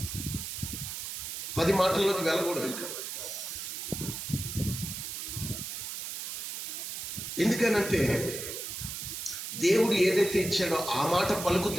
10 మాటల్లోకి వెళ్ళకూడదు. ఇంకా ఎందుకనంటే దేవుడు ఏదైతే ఇచ్చాడో ఆ మాట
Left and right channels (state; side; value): noise; right; hiss, 6 dB below the sound